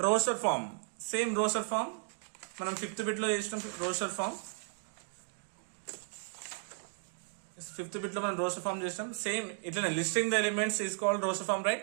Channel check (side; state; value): left; silent; 55 dB below the other